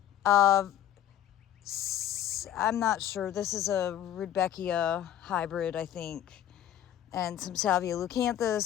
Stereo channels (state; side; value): quieter; right; 11.2 dB